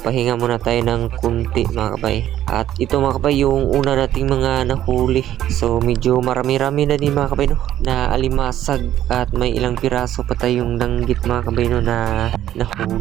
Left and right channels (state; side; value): quieter; left; 12.1 dB